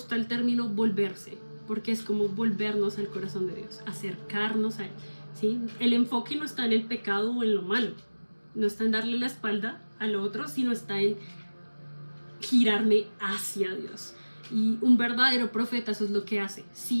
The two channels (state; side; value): inverted; both; correlation -1.00